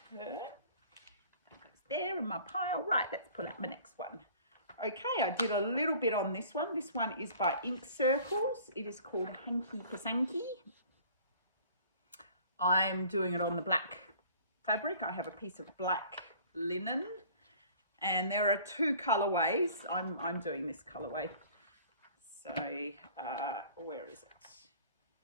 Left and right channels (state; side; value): inverted; both; correlation -0.50